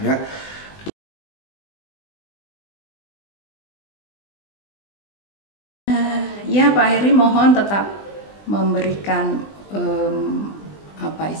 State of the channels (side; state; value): right; late; 20 ms